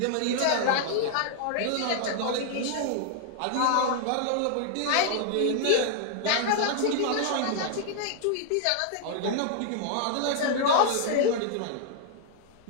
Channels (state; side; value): different; both; correlation 0.00